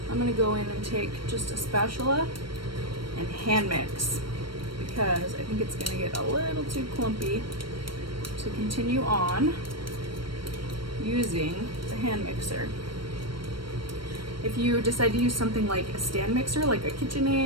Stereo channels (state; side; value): late; left; 0.73 ms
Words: I'm going to go in and take just a spatula and hand mix, because I think it's going to get a little too clumpy to continue on using the hand mixer. If you decide to use something like a stand mixer, like a